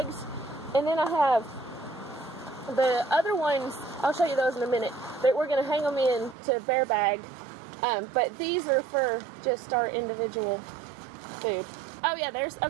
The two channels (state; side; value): drops out; left; at 6.4 s